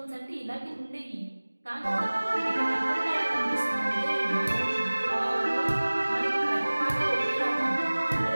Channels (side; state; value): both; inverted; correlation -1.00